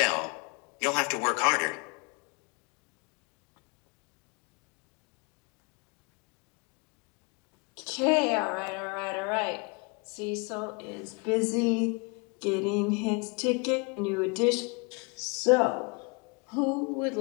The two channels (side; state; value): right; quieter; 31.1 dB